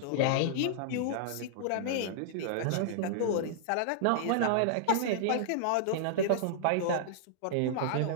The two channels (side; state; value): both; different; correlation -0.01